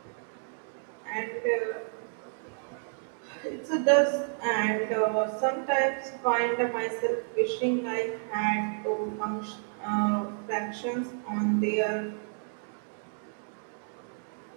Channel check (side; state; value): left; silent; 57 dB below the other